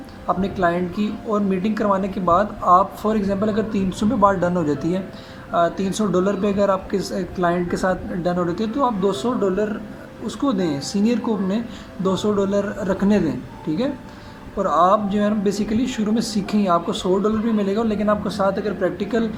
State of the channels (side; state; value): both; identical; correlation 1.00